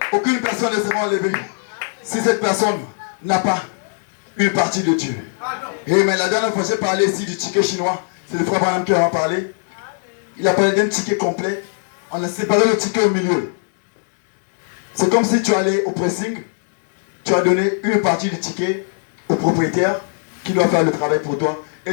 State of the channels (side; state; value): right; silent; digital silence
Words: Aucune personne ne sera enlevée si cette personne n'a pas une partie de Dieu. Et mais la dernière fois j'ai parlé ici du ticket chinois. C'est le frère Branham qui en a parlé. Il a parlé d'un ticket complet. On a séparé le ticket au milieu. C'est comme si tu allais au pressing. Tu as donné une partie du ticket au propriétaire qui doit faire le travail pour toi.